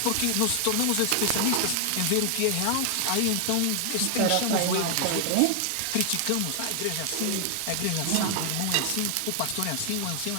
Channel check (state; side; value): different; both; correlation 0.00